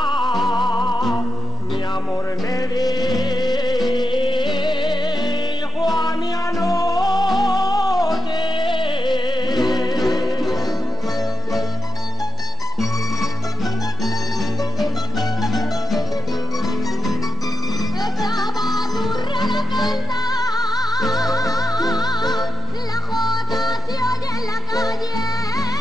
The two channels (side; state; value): both; normal; correlation 0.74